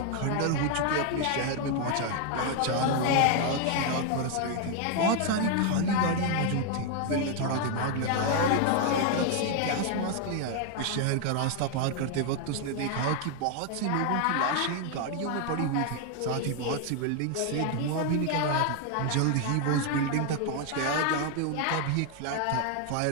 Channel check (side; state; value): both; different; correlation 0.00